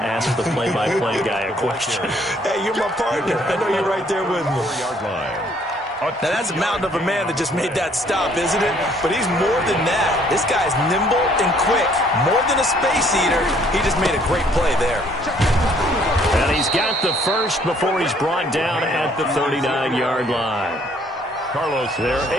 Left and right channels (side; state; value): both; normal; correlation 0.63